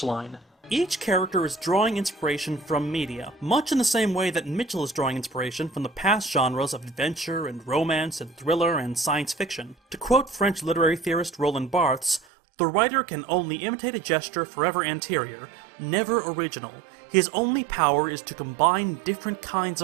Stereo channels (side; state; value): left; drops out; at 12.2 s